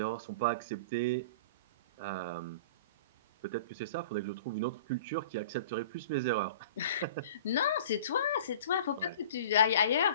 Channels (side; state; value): both; inverted; correlation -0.41